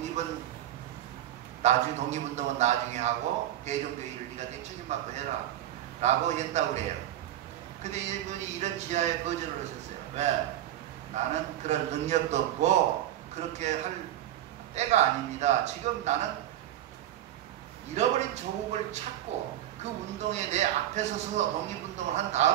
독립운동은 나중에 하고 대종교 일을 네가 책임받고 해라. 라고 했다고 그래요. 근데 이분이 이런 지하에 거절을 하셨어요. 왜? 나는 그런 능력도 없고 그렇게 할 때가 아닙니다. 지금 나는 잃어버린 조국을 찾고 그 운동에 내 앞에 서서 독립운동을 한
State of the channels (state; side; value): quieter; left; 12.7 dB